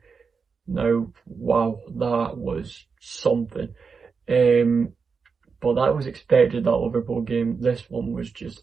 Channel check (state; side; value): quieter; left; 5.3 dB